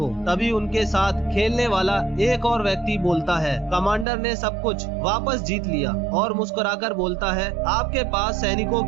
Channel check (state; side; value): drops out; left; at 4.0 s